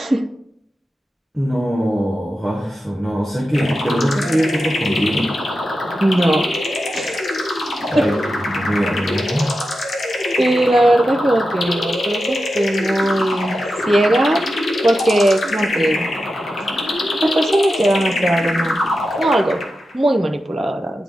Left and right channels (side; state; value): both; normal; correlation 0.91